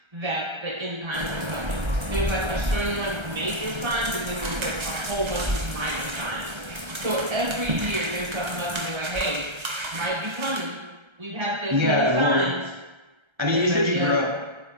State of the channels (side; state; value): left; late; 1.3 ms